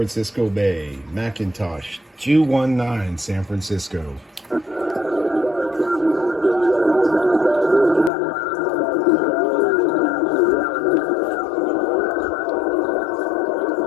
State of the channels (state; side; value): drops out; right; at 8.1 s